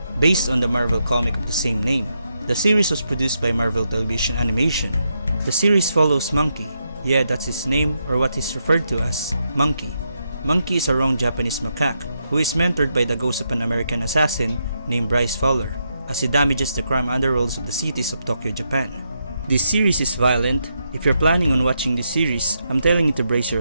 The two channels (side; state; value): both; inverted; correlation -0.82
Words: based on the Marvel comic of the same name. The series was produced by Marvel Television Animation. The series follows Monkey. Yeah, that's his name, or what is referred to as Monkey. Monkey is a wrong Japanese macaque who is mentored by the ghost of an American assassin named Bryce Fowler as he damages the crime underworlds of the cities of Tokyo, Japan. This series is violent. If you're planning on watching this series, I'm telling you to brace